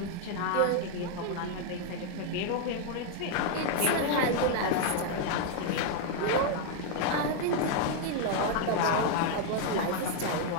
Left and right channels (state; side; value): different; both; correlation 0.00